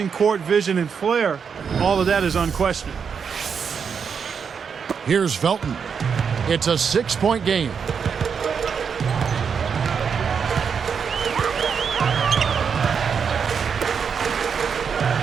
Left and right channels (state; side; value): quieter; left; 6.5 dB